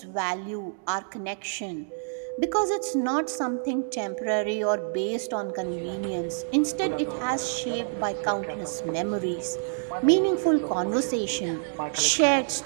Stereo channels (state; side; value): silent; left; digital silence